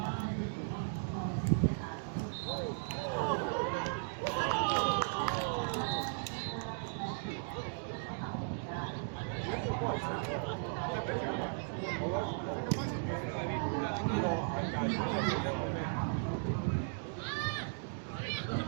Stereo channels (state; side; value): silent; left; digital silence